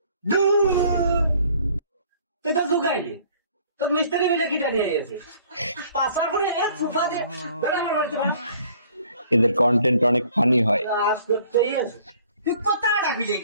তুই তো ঢুকাইলি, তোর মিস্ত্রি মিলে কিটা নিয়ে গেছে। পাশার পরে সোফা দিয়ে আমার বাড়িতে এদের কন্টেন্ট অনেক ফানি হয়। কাজ করতেই আছে। তুই কোথায় রাখবি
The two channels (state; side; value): inverted; both; correlation -0.57